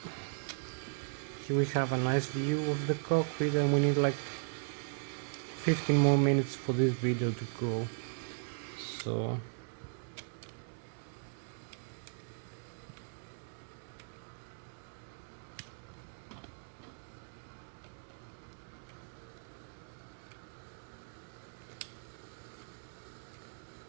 Here we have a nice view of the cockpit, and we need like 15 more minutes for this video to go. So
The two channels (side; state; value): left; silent; digital silence